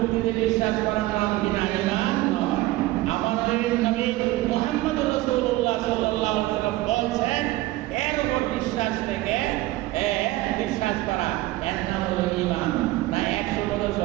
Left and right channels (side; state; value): left; quieter; 17.7 dB